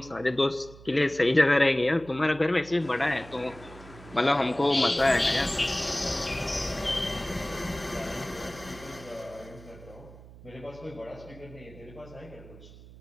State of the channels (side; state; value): right; noise; hum, 19 dB below the sound